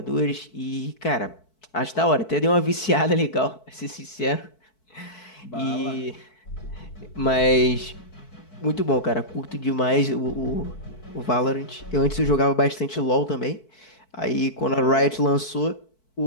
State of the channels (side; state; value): right; late; 4.6 ms